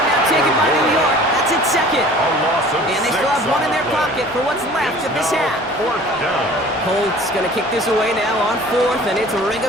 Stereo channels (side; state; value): both; normal; correlation 0.47